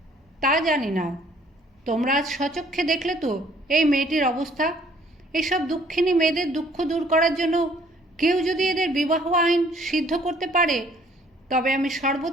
তা জানি না। তোমরা আজ স্বচক্ষে দেখলে তো এই মেয়েটির অবস্থা। এসব দুঃখিনী মেয়েদের দুঃখ দূর করার জন্য কেউ যদি এদের বিবাহ আইন সিদ্ধ করতে পারে, তবে আমি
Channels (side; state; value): both; normal; correlation 0.60